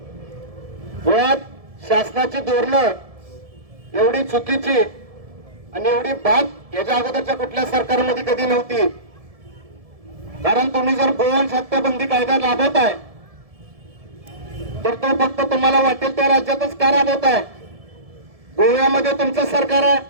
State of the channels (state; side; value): late; left; 1.7 ms